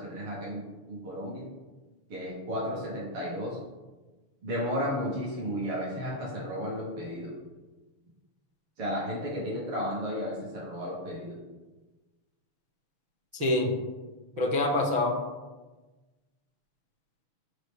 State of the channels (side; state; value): left; late; 6.2 ms